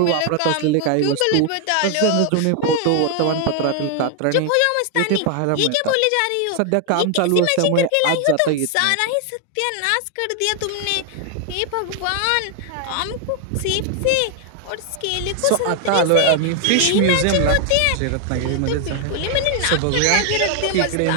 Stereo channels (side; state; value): both; different; correlation 0.00